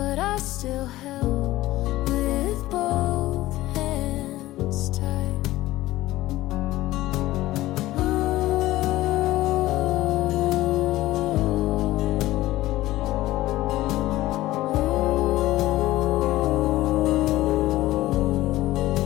I still held with both hands tight.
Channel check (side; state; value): right; quieter; 16.6 dB